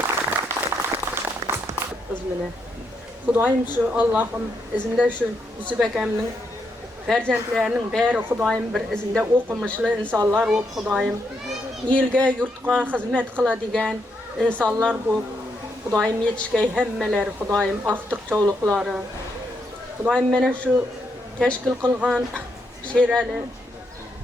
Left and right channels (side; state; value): both; normal; correlation 0.79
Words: Bizmine. Xudoyim şu Allah'ım izinde şu Yusuf akamning farzandlarining bari Xudoyim bir izinde o'qimishli insonlar bo'lib, Xudoyim elga, yurtga xizmat qiladigan insonlar bo'lib, Xudoyim yetishgay hammalari, Xudoyim aqtiq cho'liqlari. Xudoyim mana shu tashkil qilgan Sherali